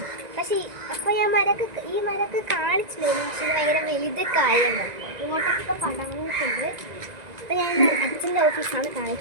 പക്ഷേ അപ്പോൾ ഞാൻ ഈ മരക്ക് കാണിച്ചില്ലായിരുന്നു. പക്ഷേ ഇത് ഭയങ്കര വലുതൊക്കെ ആയിരുന്നു. ഇങ്ങോട്ടൊക്കെ പടങ്ങിയിട്ടുണ്ട്. അപ്പോൾ ഞാൻ അച്ഛൻ്റെ ഓഫീസാണ്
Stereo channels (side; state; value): left; late; 1.9 ms